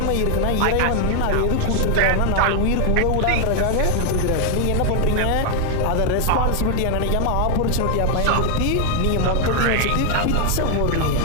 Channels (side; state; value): both; different; correlation 0.00